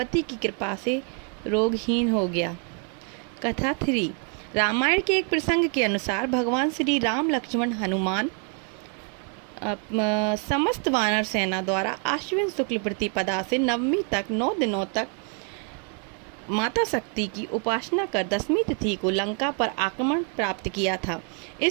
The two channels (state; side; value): quieter; left; 39.3 dB